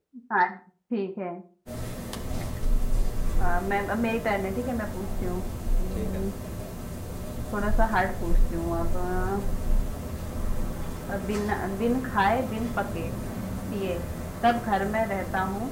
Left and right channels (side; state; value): both; identical; correlation 1.00